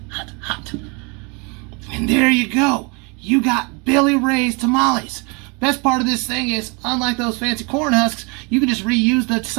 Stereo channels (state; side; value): quieter; left; 31.4 dB